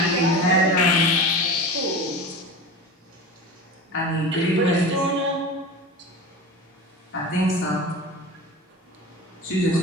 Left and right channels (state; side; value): normal; both; correlation 0.31